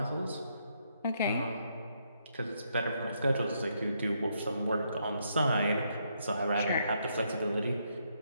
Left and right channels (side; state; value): both; inverted; correlation -0.76